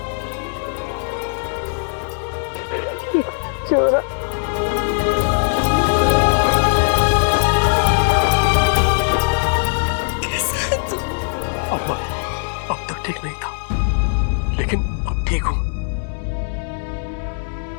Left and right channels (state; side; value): silent; right; digital silence